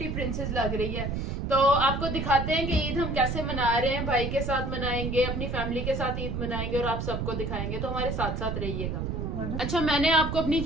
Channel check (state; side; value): noise; right; rumble, 3 dB below the sound